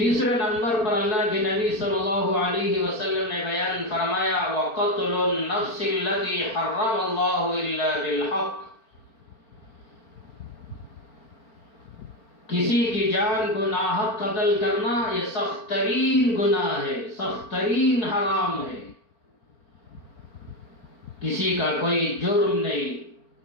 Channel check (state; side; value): late; right; 4.4 ms